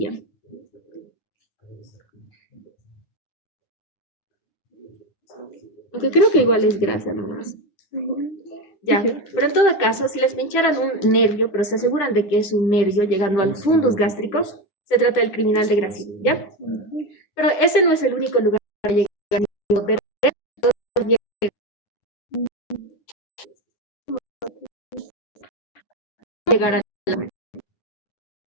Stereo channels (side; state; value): right; late; 9.7 ms